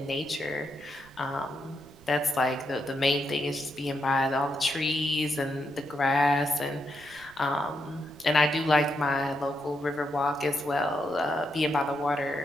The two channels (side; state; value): right; noise; rumble, 25 dB below the sound